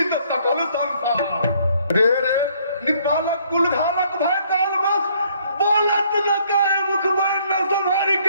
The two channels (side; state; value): both; inverted; correlation -0.64